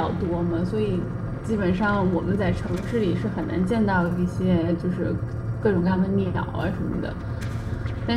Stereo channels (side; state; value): both; identical; correlation 1.00